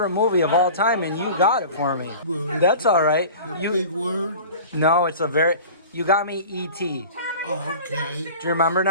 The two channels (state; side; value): inverted; both; correlation -0.39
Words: movie of all time, and you got it for me. That's all right. Big word. No, you got me E.T. Oh, okay. Do you remember